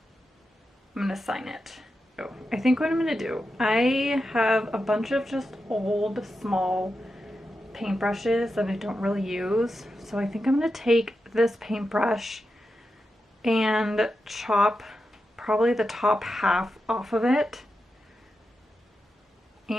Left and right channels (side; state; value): both; normal; correlation 0.89